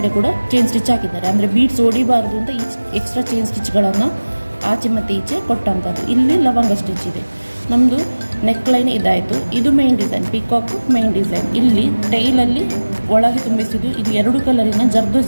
ಕೂಡ ಚೈನ್ ಸ್ಟಿಚ್ ಹಾಕಿದ್ದಾರೆ. ಅಂದರೆ ಬೀಡ್ಸ್ ಹೊಡಿಬಾರ್ದು ಅಂತ ಎಕ್ಸ್ಟ್ರಾ ಚೈನ್ ಸ್ಟಿಚ್ಗಳನ್ನು ಆಚೆ ಮತ್ತು ಈಚೆ ಕೊಟ್ಟಂಥದ್ದು. ಇಲ್ಲಿ ಲವಂಗ ಸ್ಟಿಚ್ ಇದೆ. ನಮ್ಮದು ನೆಕ್ ಲೈನ್ ಇದಾಯಿತು. ಇದು main design, peacock main design. ಇಲ್ಲಿ ಟೈಲಲ್ಲಿ ಒಳಗೆ ತುಂಬಿಸಿದ್ದು, ಇದು 2 ಕಲರಿನ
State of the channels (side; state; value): both; inverted; correlation -1.00